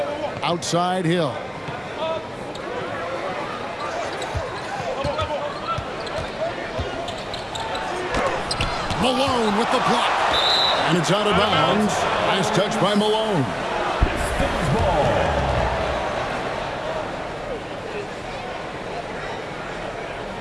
Outside Hill. Malone with the block. And it's out of bounds. Nice touch by Malone. Pistons ball.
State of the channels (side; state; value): both; identical; correlation 1.00